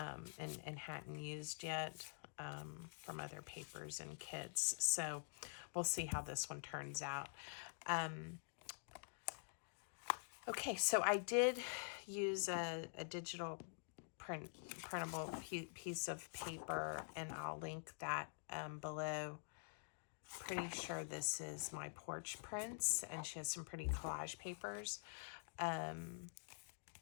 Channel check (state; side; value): silent; right; digital silence